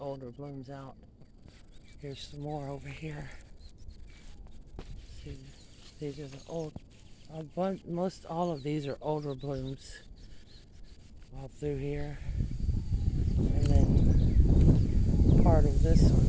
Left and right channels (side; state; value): both; identical; correlation 1.00